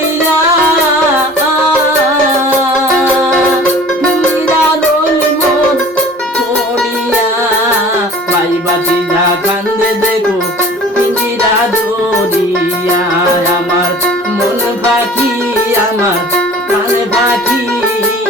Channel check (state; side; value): normal; both; correlation 0.45